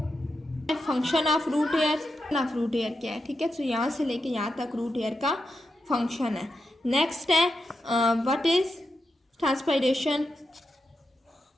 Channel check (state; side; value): normal; both; correlation 0.88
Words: फंक्शन ऑफ रूट हेयर क्या है। ठीक है, तो यहाँ से लेके यहाँ तक रूट हेयर का फंक्शन है। नेक्स्ट है व्हाट इज ट्रांसपायरेशन।